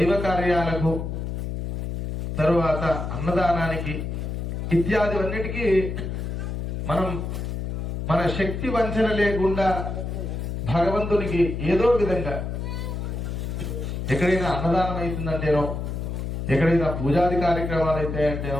కార్యాలకు తరువాత అన్నదానానికి ఇత్యాదివన్నిటికీ మనం మన శక్తి వంచన లేకుండా భగవంతునికి ఏదో విధంగా ఎక్కడైనా అన్నదానం అవుతుందంటేనో ఎక్కడైనా పూజాది కార్యక్రమాలు అయితే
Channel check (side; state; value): left; noise; hum, 4 dB below the sound